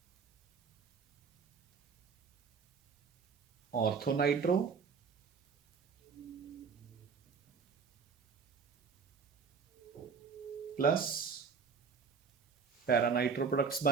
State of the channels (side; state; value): left; quieter; 5.7 dB